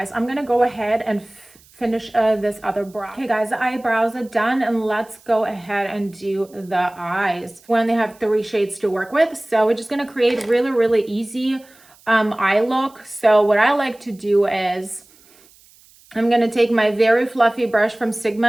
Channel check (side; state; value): right; noise; hiss, 28 dB below the sound